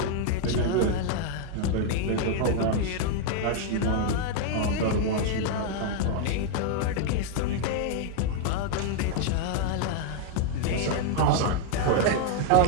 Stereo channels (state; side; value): different; both; correlation 0.00